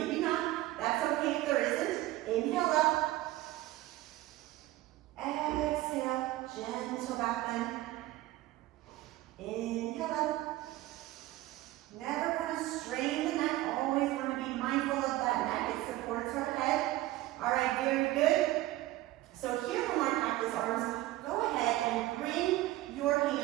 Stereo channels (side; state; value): left; quieter; 16.7 dB